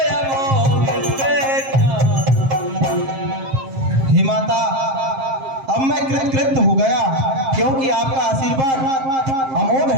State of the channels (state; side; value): late; left; 7.5 ms